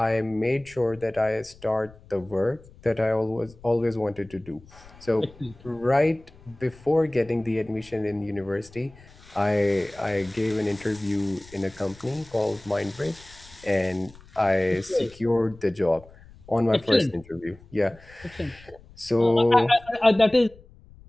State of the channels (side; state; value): left; noise; rumble, 23 dB below the sound